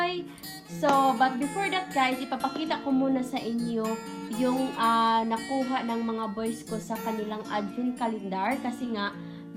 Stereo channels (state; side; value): identical; both; correlation 1.00